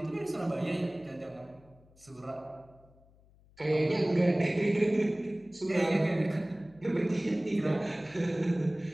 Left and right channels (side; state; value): left; noise; hum, 28 dB below the sound